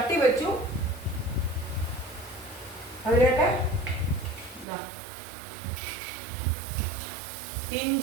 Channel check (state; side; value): drops out; left; at 4.7 s